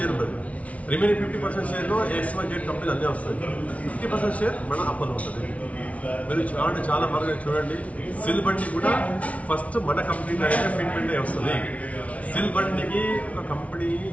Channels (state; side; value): late; right; 0.066 ms